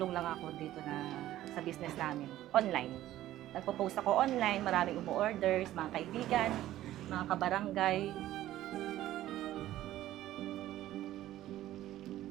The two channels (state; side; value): quieter; left; 14.0 dB